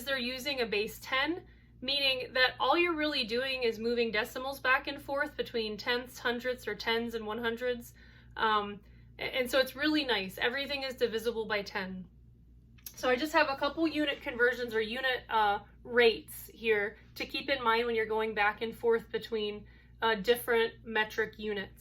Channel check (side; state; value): both; identical; correlation 1.00